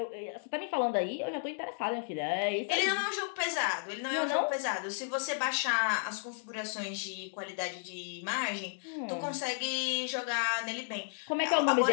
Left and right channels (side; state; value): right; silent; digital silence